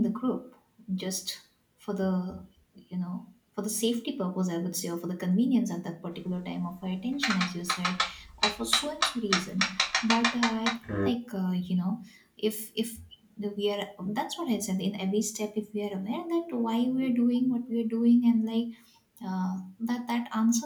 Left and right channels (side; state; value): both; identical; correlation 1.00